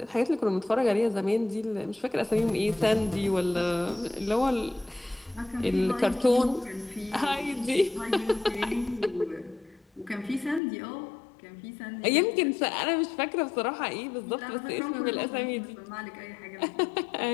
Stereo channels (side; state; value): right; drops out; at 10.6 s